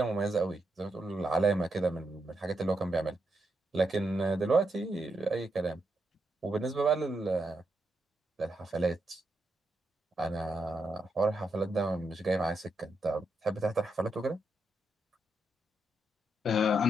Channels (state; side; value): normal; both; correlation 0.82